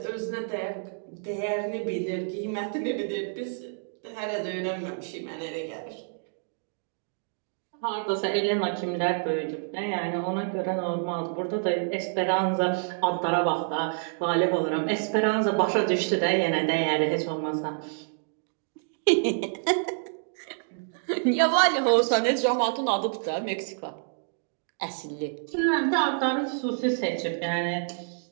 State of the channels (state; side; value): silent; left; digital silence